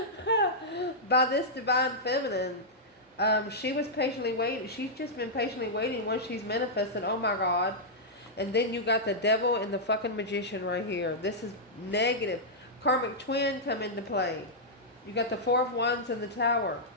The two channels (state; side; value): normal; both; correlation -0.09